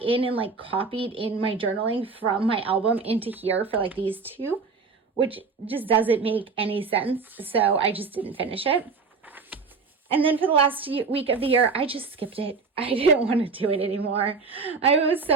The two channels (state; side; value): quieter; left; 4.7 dB